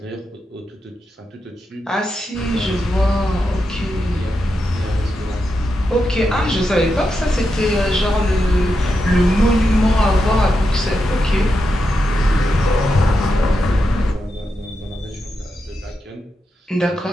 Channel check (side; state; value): both; normal; correlation 0.86